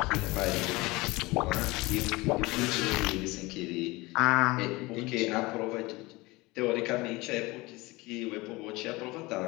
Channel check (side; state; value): right; quieter; 22.3 dB